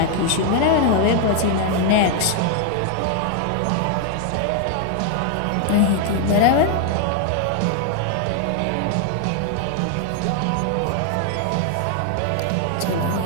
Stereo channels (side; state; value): both; different; correlation 0.00